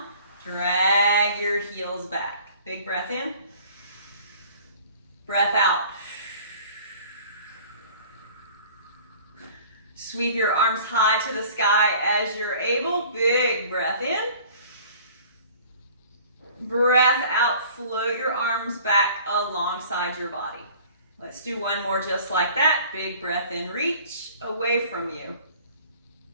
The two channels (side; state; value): both; inverted; correlation -0.49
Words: Drag your heels back. Big breath in. Breath out. Sweep your arms high to the sky as you're able. Big breath in. Breath out. Float your arms back alongside your body. Let's do one more just like that. Big breath in. Reach away from you.